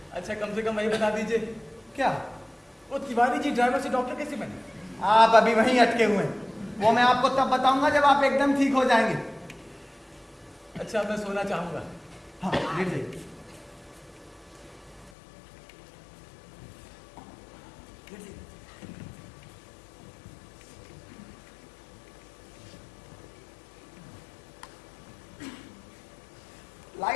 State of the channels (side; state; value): right; drops out; at 15.1 s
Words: अच्छा कम से कम वही बता दीजिए, क्या? वो तिवारी जी ड्राइवर से डॉक्टर कैसे बने? आप अभी वहीं अटके हुए हैं, वो मैं आपको तब बताऊंगा जब आप एकदम ठीक हो जाएंगे। अच्छा मैं सोना चाहूंगा। हाँ लेट जाइए।